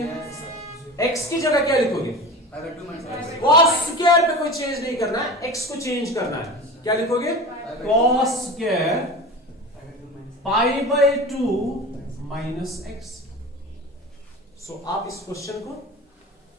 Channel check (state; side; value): normal; both; correlation 0.32